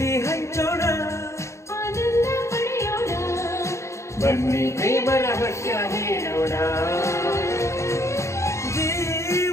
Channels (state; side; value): late; right; 0.14 ms